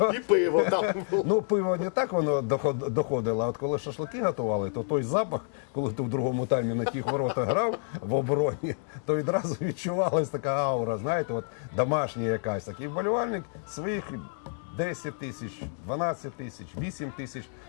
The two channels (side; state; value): right; silent; 59 dB below the other